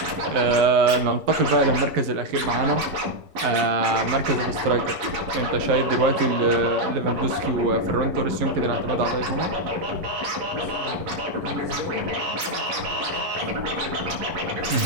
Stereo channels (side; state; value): left; late; 11 ms